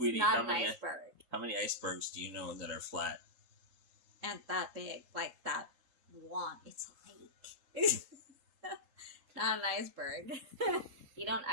not an iceberg. How many icebergs do you know that are flat? And that big, like that one. It's a lake. Not an iceberg. You don't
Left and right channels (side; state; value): left; late; 3.8 ms